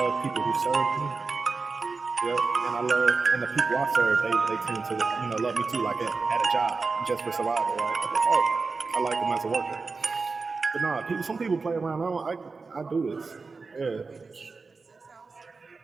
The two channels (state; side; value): quieter; left; 4.3 dB